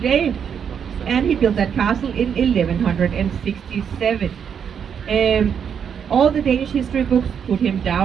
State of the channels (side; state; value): left; quieter; 7.6 dB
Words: and he built that castle in 1167. All the Danish history books put him